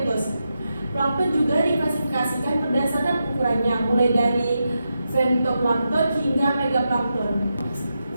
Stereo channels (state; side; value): inverted; both; correlation -0.87